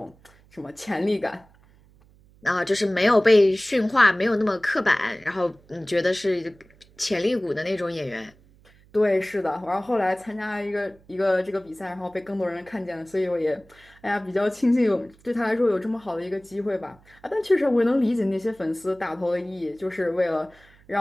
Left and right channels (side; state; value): right; noise; hum, 28 dB below the sound